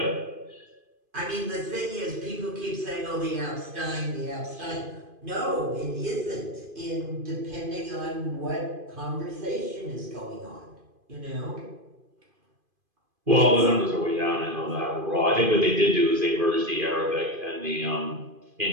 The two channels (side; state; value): left; late; 2.5 ms